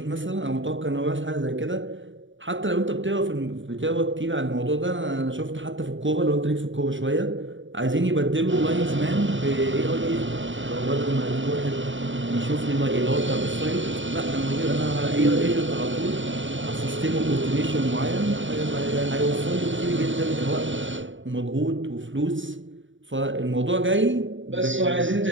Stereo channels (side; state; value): left; late; 0.55 ms